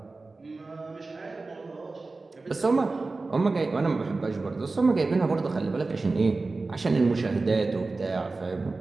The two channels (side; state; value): left; quieter; 3.6 dB